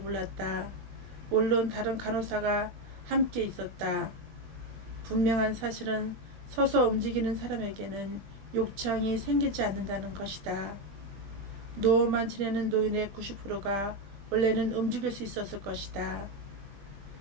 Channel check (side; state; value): left; late; 20 ms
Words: 물론 다른 간호사가 함께 있었다. 분명한 사실은 서서 움직이는 사람에게는 욕창이 생기지 않는다는 것이다. 누워만 지내는 노인의 90%가 원래는 움직일 수 있었을 것이다.